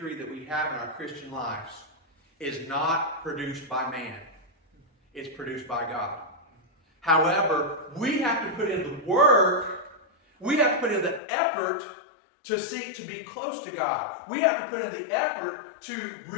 that we have in our Christian lives is not produced by man. It's produced by God. However, we have to put in the work, we have to put in the effort to seek to be close to God. We have to put in the effort to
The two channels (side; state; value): right; drops out; at 11.2 s